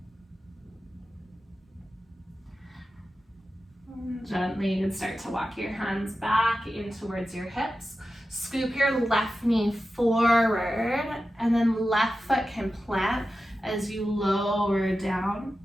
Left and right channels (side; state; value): both; normal; correlation 0.93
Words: Gently, you can start to walk your hands back in towards your hips. Scoop your left knee forward, and then left foot can plant as you lower down,